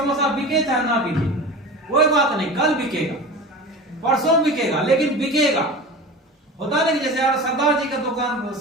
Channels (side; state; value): both; normal; correlation 0.33